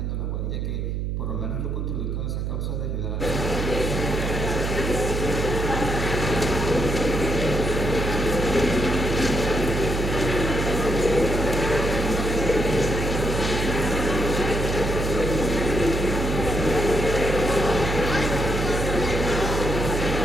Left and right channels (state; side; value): noise; right; hum, 2 dB below the sound